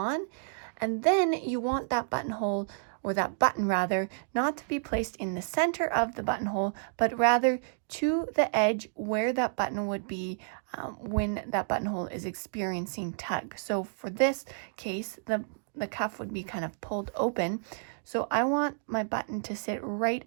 And then you want that buttonhole, or that button rather, not to be placed in the center of the buttonhole, but rather to the edge where that button would be when that buttonhole is experiencing tug. So for this case, the cuff would be kind of pulled open. So I want my button to sit right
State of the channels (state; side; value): silent; left; digital silence